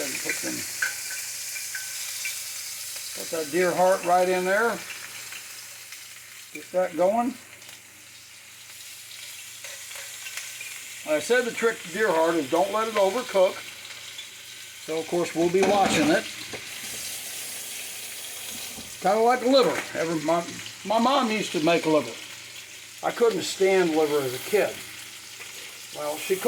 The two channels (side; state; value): both; identical; correlation 1.00